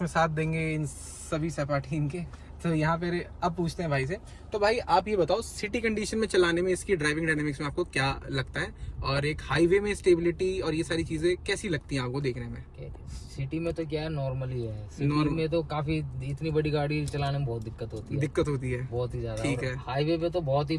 साथ देंगे इन सभी सपाटी इनके। तो यहाँ पे अब पूछते हैं भाई से। तो भाई आप ये बताओ, सिटी कंडीशन में चलाने में इसकी ड्राइविंग डायनामिक्स में आपको क्या लगता है, और एक हाईवे में स्टेबिलिटी और ये सारी चीजें कैसी लगती हैं आपको देखने में? सिटी में तो क्या है, नॉर्मल ही है। सिटी में तो काफी, इतनी बड़ी गाड़ी चलाने में बहुत दिक्कत होती है, बहुत ही ज्यादा। ठीक है, हाईवे पे तो बहुत ही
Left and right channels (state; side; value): identical; both; correlation 1.00